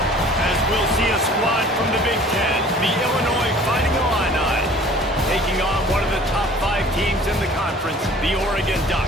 As we'll see a squad from the Big Ten, the Illinois Fighting Illini, taking on one of the top 5 teams in the conference, the Oregon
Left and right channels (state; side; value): normal; both; correlation 0.49